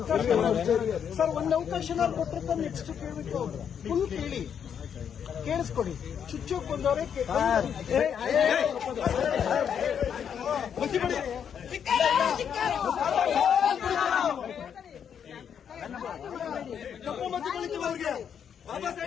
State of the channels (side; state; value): right; quieter; 8.0 dB